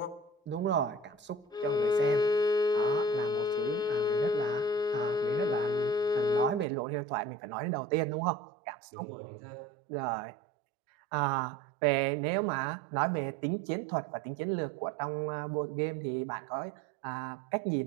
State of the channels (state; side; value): drops out; left; at 6.7 s